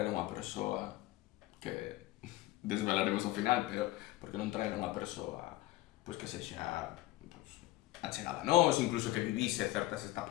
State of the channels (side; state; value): right; quieter; 16.9 dB